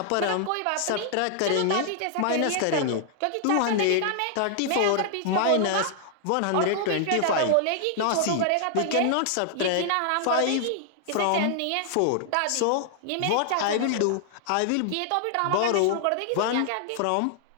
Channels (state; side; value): different; both; correlation -0.01